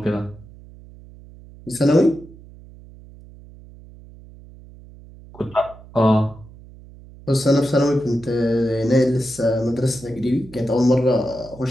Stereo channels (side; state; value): right; noise; hum, 20 dB below the sound